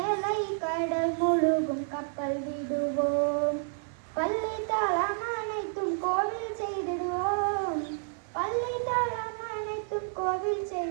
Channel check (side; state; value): left; silent; digital silence